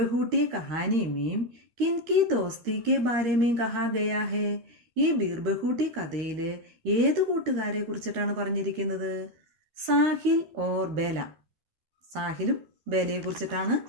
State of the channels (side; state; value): left; late; 13 ms